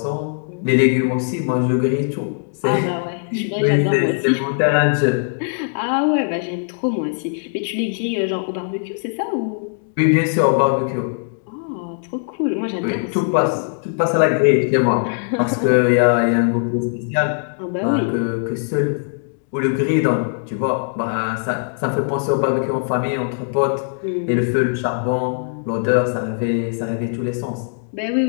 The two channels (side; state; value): right; silent; digital silence